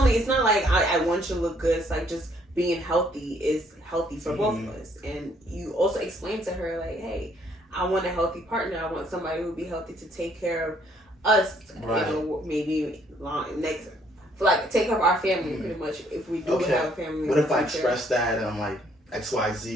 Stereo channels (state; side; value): normal; both; correlation 0.66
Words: it's not like I want you to look good. It's like just being healthy is healthy for both of us, and you also explain to her like, hey, I want a healthy partner. I want somebody who will be healthy to take care of us. Right. You know, maybe next. Like take care of our family pretty much if we do have a family. What if I express that and I'm like